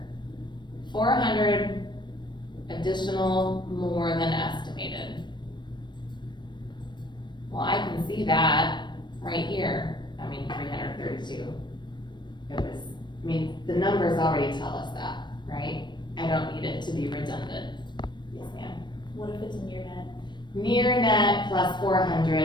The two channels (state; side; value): late; right; 0.22 ms